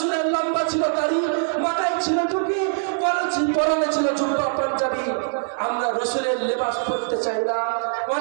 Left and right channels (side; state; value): left; silent; digital silence